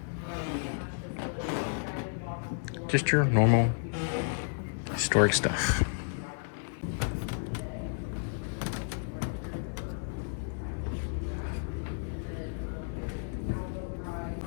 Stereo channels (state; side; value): silent; right; 56 dB below the other